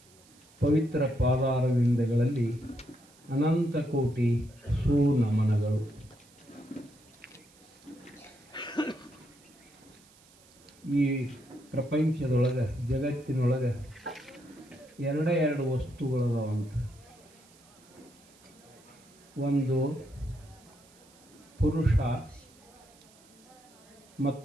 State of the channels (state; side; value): noise; right; hiss, 27 dB below the sound